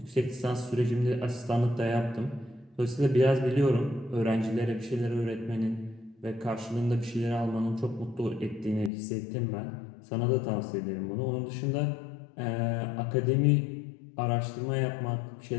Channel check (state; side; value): drops out; right; at 8.9 s